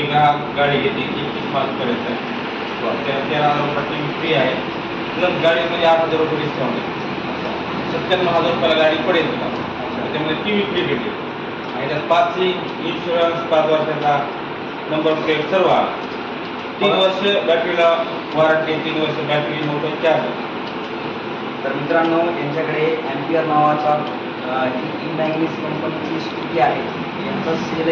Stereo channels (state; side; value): identical; both; correlation 1.00